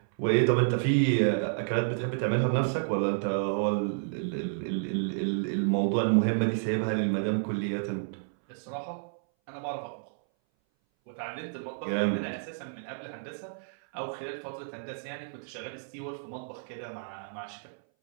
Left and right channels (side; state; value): left; silent; 58 dB below the other